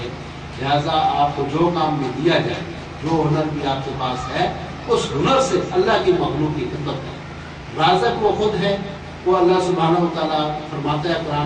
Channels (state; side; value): identical; both; correlation 1.00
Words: ہے. لہٰذا آپ کو جو کام بھی دیا جائے، جو ہنر بھی آپ کے پاس ہے، اس ہنر سے اللہ کی مخلوق کی خدمت کریں. رازق وہ خود ہے، وہ اللہ سبحانہ و تعالیٰ فرماتا ہے